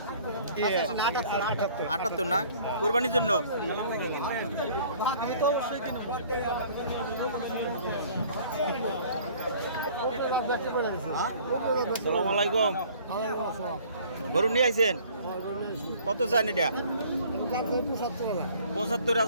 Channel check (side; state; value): both; inverted; correlation -0.53